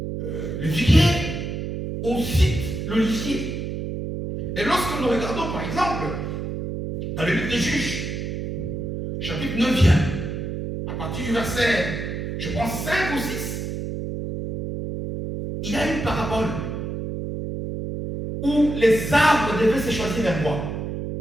le figuier, on cite l'olivier. Et lorsque nous regardons, par exemple, dans le livre des Juges, chapitre 9, à partir du verset, je pense 5 ou 6, il y a une parabole où les arbres devaient se choisir un roi.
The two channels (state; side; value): noise; right; hum, 4 dB below the sound